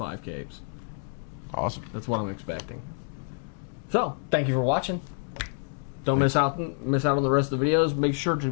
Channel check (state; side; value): silent; right; 56 dB below the other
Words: capes. Awesome. That's what I'm expecting. So, thank you for watching. Don't miss out on the rest of the videos. Make sure to